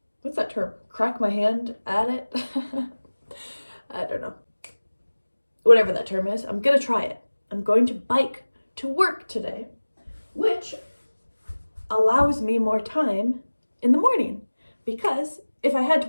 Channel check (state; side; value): inverted; both; correlation -1.00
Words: what's that term? Crack my hand at it? I don't know. Whatever that term is, I'm going to try it. I'm going to bike to work today, which allows me more time in the morning, because if I had to